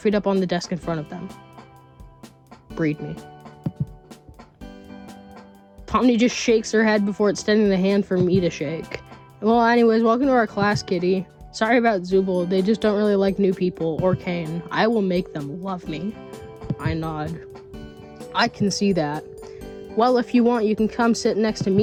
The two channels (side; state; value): both; identical; correlation 1.00